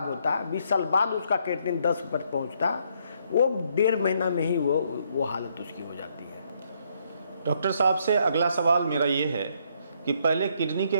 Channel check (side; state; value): both; inverted; correlation -0.71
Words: होता है, 20 साल बाद उसका क्रिएटिनिन 10 पर पहुँचता, वो 1.5 महीना में ही वो हालत उसकी हो जाती है। डॉक्टर साहब से अगला सवाल मेरा ये है कि पहले किडनी